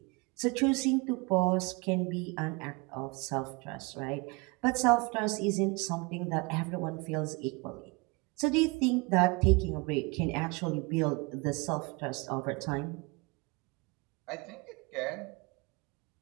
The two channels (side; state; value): left; quieter; 27.8 dB